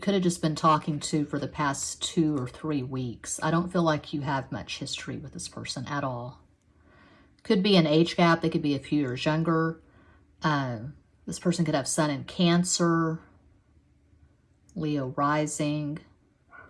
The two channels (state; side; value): identical; both; correlation 1.00